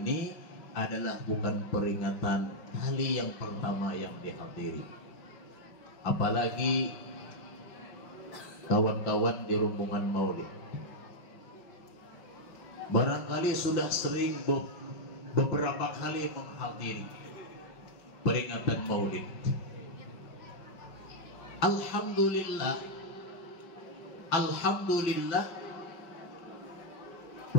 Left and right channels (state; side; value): late; right; 5.9 ms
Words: adalah bukan peringatan kali yang pertama yang dihadiri. Apalagi kawan-kawan di rombongan Maulid barangkali sudah sering beberapa kali menghadiri peringatan Maulid. Alhamdulillah